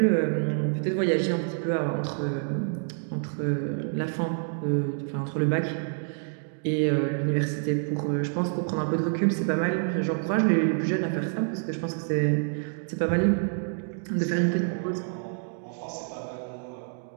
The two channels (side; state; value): left; silent; 60 dB below the other